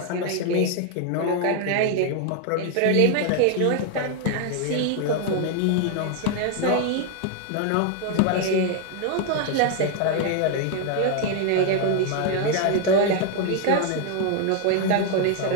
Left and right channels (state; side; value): different; both; correlation 0.01